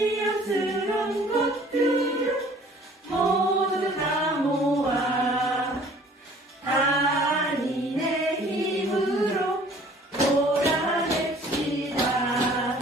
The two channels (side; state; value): both; normal; correlation 0.53